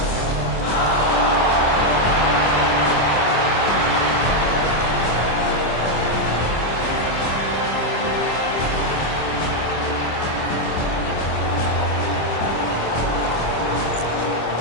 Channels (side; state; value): right; late; 25 ms